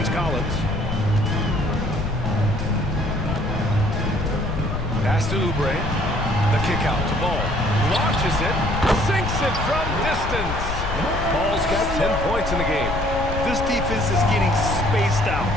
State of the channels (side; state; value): left; noise; rumble, 4 dB below the sound